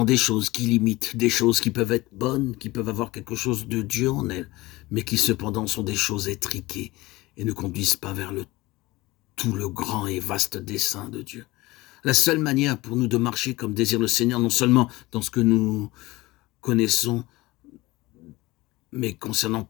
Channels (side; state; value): right; quieter; 20.2 dB